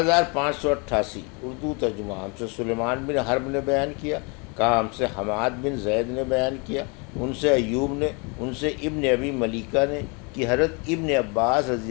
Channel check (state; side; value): quieter; right; 32.0 dB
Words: اردو ترجمہ۔ ہم سے سلیمان بن حرب نے بیان کیا، کہا ہم سے حماد بن زید نے بیان کیا، ان سے ایوب نے، ان سے ابن ابی ملیکہ نے کہ حضرت ابن عباس